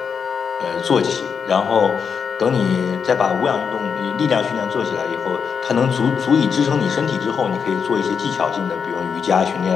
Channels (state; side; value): quieter; right; 6.4 dB